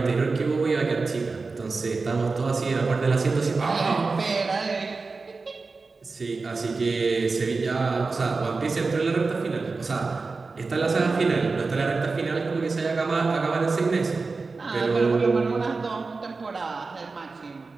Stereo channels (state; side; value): quieter; left; 4.1 dB